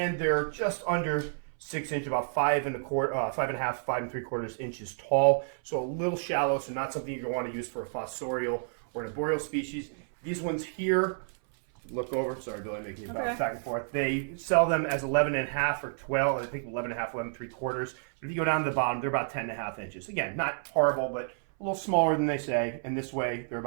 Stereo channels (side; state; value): left; silent; 58 dB below the other